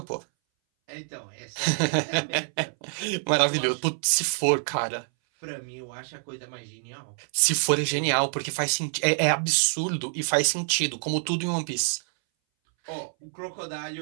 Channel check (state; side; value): silent; left; 60 dB below the other